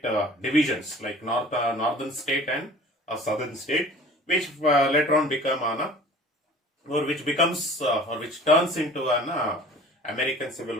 divisions, like northern state and a southern state, which later on become or which becomes or which turns into an American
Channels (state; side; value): normal; both; correlation 0.45